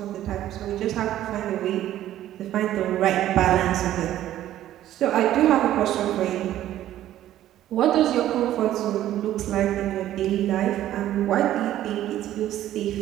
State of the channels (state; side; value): quieter; left; 12.9 dB